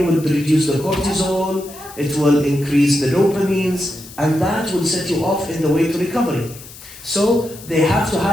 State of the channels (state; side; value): noise; left; hiss, 17 dB below the sound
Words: will reduce the cortisol, it will increase the dopamines, and that will set you off in the way to recovery. So they have to